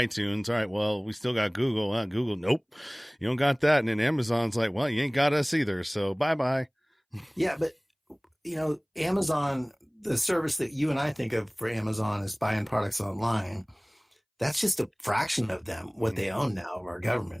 All right. Well, we still got Google. Google, nope, you don't got that. And then Amazon's like, well, you ain't got us either. So bye. Yeah, but Amazon, the service that you and I think of for Amazon is buying products online. That's just a fraction of them, what they own now of our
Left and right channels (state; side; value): identical; both; correlation 1.00